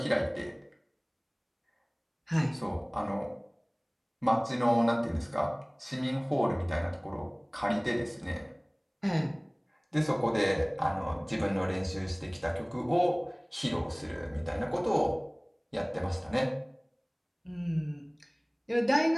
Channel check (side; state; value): both; identical; correlation 1.00